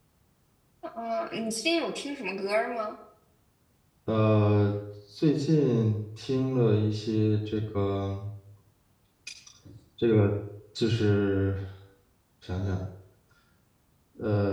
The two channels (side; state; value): both; identical; correlation 1.00